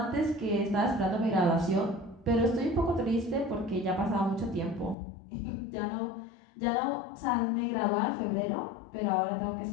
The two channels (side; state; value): right; drops out; at 5.0 s